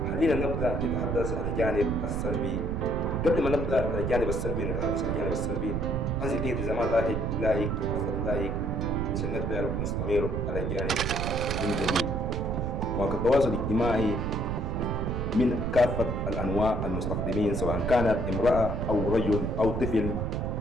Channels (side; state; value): right; noise; rumble, 1 dB below the sound